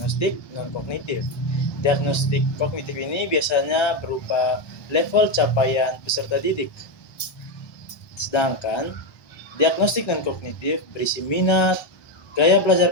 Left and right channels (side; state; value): right; late; 1.2 ms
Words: non-kognitif. Diagnostik kognitif ini biasanya berupa level capaian peserta didik. Sedangkan diagnostik non-kognitif berisi minat, gaya belajar